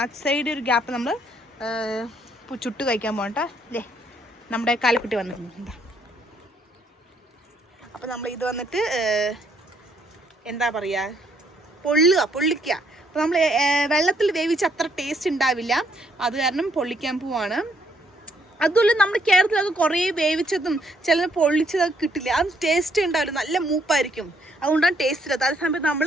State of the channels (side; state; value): both; normal; correlation 0.70